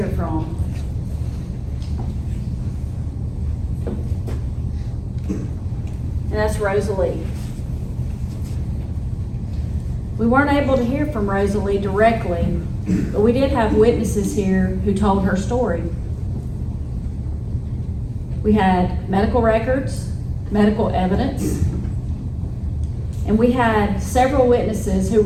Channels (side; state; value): both; identical; correlation 1.00